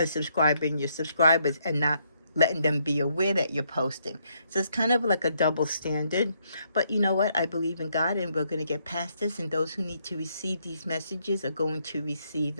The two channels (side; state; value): both; inverted; correlation -0.73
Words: your subscribers and not letting them be aware that you're posting? So it's kind of like a double standard. But you know what? I believe in God, and we're going to get past this, and those who need to receive these messages are going to receive